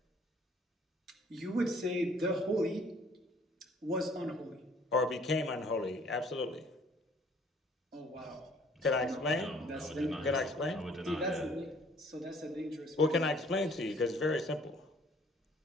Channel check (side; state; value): both; normal; correlation 0.58